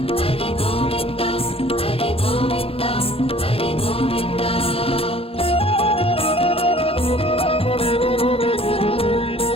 హరి గోవింద హరి గోవింద హరి గోవింద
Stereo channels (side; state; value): right; late; 0.27 ms